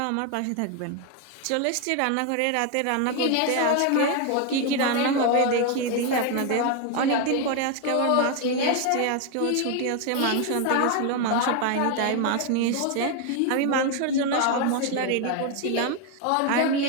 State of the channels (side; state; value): both; different; correlation 0.01